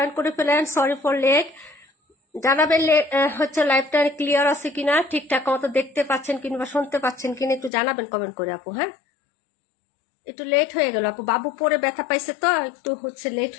করে ফেলেন। Sorry for late. জানাবেন হচ্ছে লাইভটা ক্লিয়ার আছে কিনা, ঠিকঠাক মতো দেখতে পাচ্ছেন কিংবা শুনতে পাচ্ছেন কিনা একটু জানাবেন কমেন্ট করে আপু। হ্যাঁ, একটু লেট হয়ে গেল আপু, বাবু পরে ব্যথা পাইছে তো একটু হচ্ছে লেট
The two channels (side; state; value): right; drops out; at 7.7 s